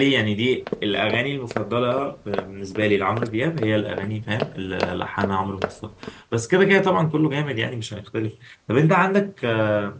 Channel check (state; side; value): identical; both; correlation 1.00